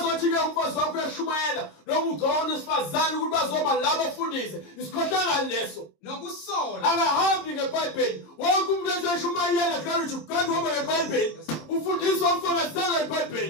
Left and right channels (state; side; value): late; right; 26 ms